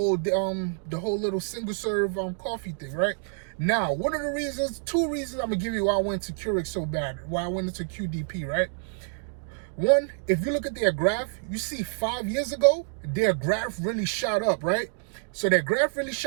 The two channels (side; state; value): left; silent; 59 dB below the other